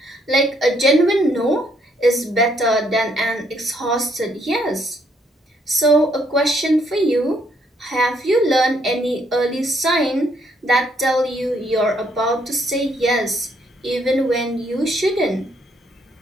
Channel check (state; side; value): normal; both; correlation 0.70